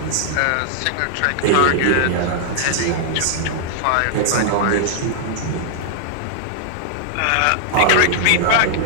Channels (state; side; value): different; both; correlation -0.01